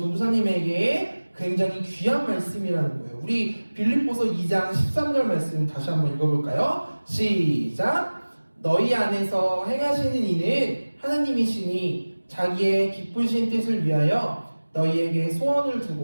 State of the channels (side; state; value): both; inverted; correlation -1.00